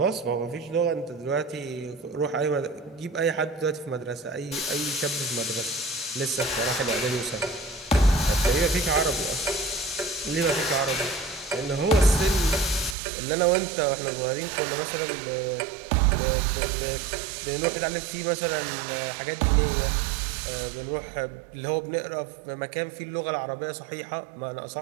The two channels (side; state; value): left; drops out; at 13.0 s